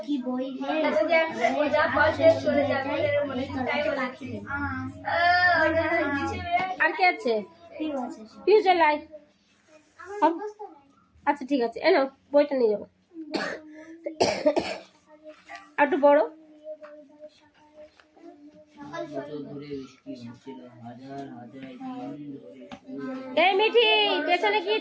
কি বই নেই, পাখি নেই। আর কে আছে? ঠিক আছে, ফিউচার লাইফ। আচ্ছা ঠিক আছে, এনো বইটা নিয়ে যাবো। আর একটু বড়। এই মিঠি, পেছনে কি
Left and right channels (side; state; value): both; identical; correlation 1.00